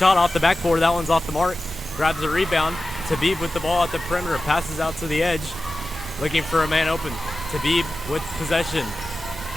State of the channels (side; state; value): both; normal; correlation 0.94